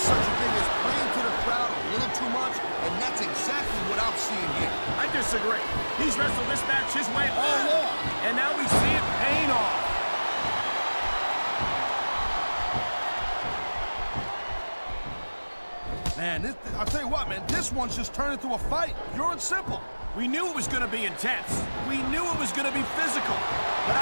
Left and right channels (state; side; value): inverted; both; correlation -1.00